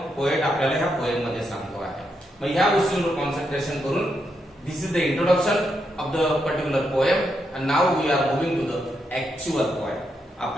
पोएट आपल्याला ह्या पोएम मध्ये सांगतो आहे. मग ह्या गोष्टींवर कॉन्सन्ट्रेशन करून this is the introduction of the particular poem and now we are moving to the actual poem.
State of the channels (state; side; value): normal; both; correlation 0.81